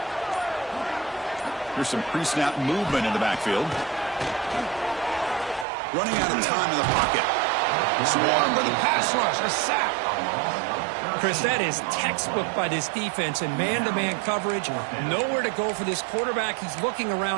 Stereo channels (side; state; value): left; drops out; at 5.7 s